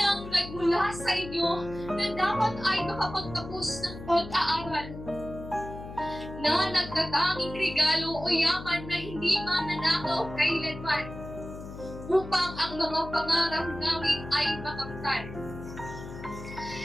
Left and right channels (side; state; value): left; noise; hum, 12 dB below the sound